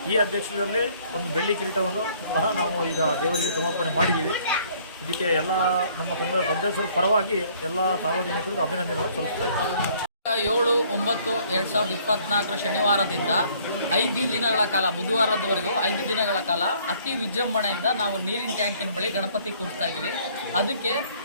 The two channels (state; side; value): inverted; both; correlation -0.60